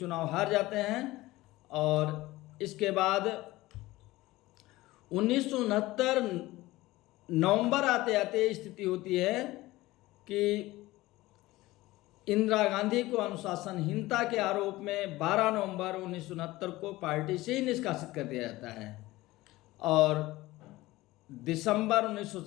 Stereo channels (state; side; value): quieter; right; 18.5 dB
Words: हार जाते हैं। और इसके बाद 1969 नवंबर आते आते स्थिति होती है कि इंदिरा गांधी को अनुशासनहीनता के आरोप में 12 नवंबर 1969 को पार्टी से ही निष्कासित कर दिया जाता है। और दिसंबर